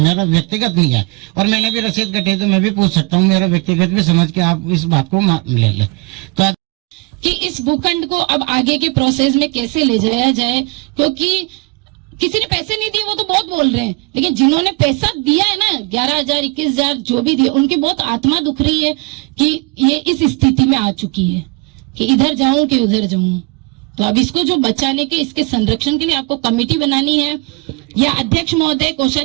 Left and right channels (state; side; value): quieter; left; 27.4 dB